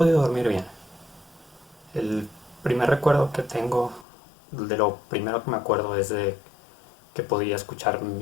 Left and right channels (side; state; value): right; drops out; at 4.0 s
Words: dormir bien. El primer recuerdo que tengo, de lo primero que me acuerdo es de que podía escuchar